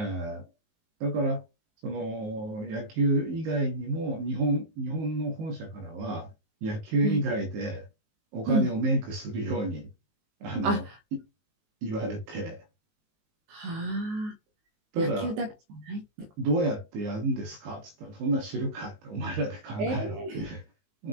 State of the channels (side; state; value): left; late; 19 ms